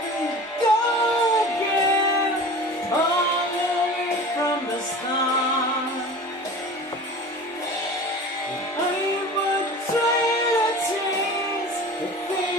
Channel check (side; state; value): both; normal; correlation 0.38